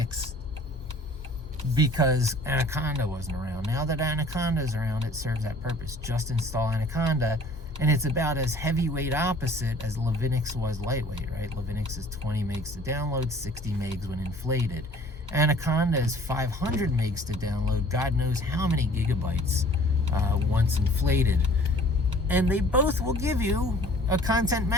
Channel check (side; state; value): both; normal; correlation 0.51